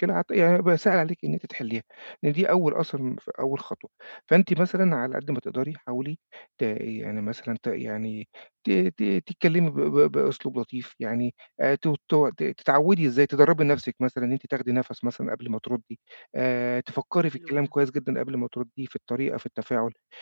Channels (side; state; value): both; inverted; correlation -1.00